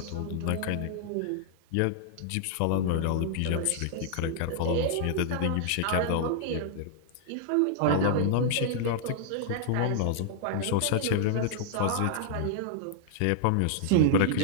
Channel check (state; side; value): different; both; correlation -0.01